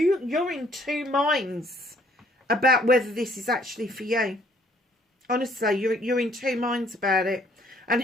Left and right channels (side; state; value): both; normal; correlation 0.62